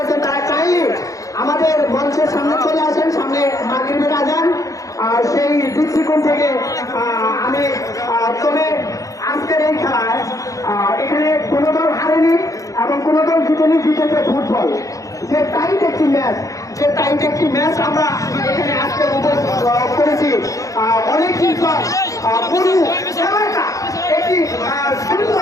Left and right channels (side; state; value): right; late; 0.16 ms